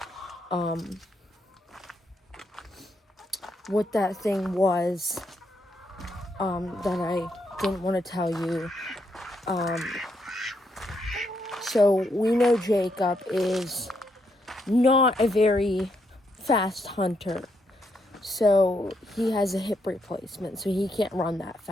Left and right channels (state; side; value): normal; both; correlation 0.77